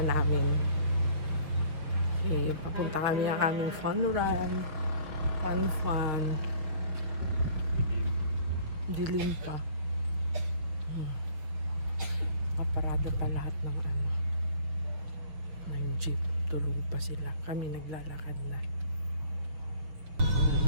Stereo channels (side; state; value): left; late; 6.5 ms